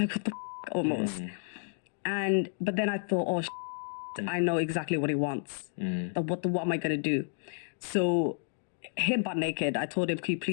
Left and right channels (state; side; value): silent; right; digital silence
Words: what the almost. But then I thought, I know exactly what he wants. What am I going to do? So him butt naked, I told him, "Can you